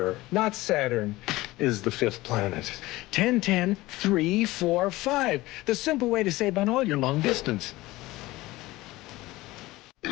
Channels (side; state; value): right; quieter; 18.9 dB